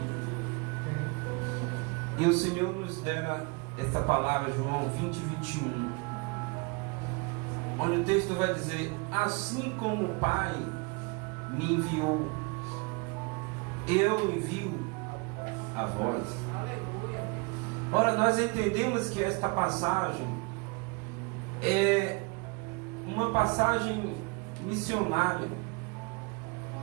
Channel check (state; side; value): quieter; left; 29.3 dB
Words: E o Senhor nos dera essa palavra, João 20, 21, onde o texto vai dizer: Assim como o Pai me enviou, eu envio a vós. Ora, nós entendemos que esta passagem é uma passagem missionária,